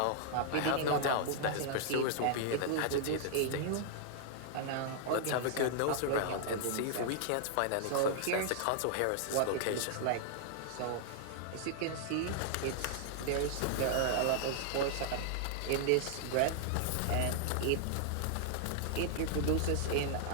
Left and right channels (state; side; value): different; both; correlation 0.00